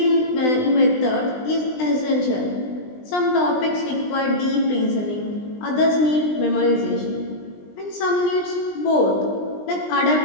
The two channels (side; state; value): right; late; 20 ms